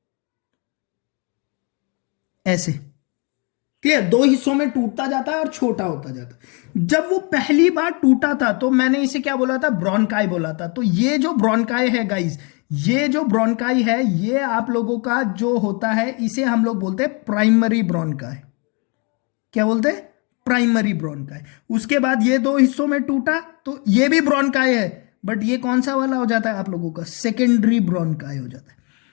ऐसे। क्लियर, दो हिस्सों में टूटता जाता है और छोटा होता जाता है। जब वो पहली बार टूटा था तो मैंने इसे क्या बोला था, ब्रोंकाई बोला था। तो ये जो ब्रोंकाई है गाइस, ये जो ब्रोंकाई है, ये आप लोगों का जो होता है, इसे हम लोग बोलते हैं प्राइमरी ब्रोंकाई। क्या बोलते हैं, प्राइमरी ब्रोंकाई। उसके बाद ये दो हिस्सों में टूटा तो ये भी ब्रोंकाई है, बट ये कौन सा वाला हो जाता है आप लोगों का, सेकेंडरी ब्रोंकाई हो जाता है।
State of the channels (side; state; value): right; quieter; 32.9 dB